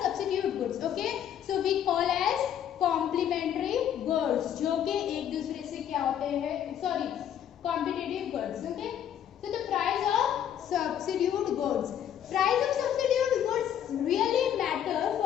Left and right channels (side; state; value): right; quieter; 9.8 dB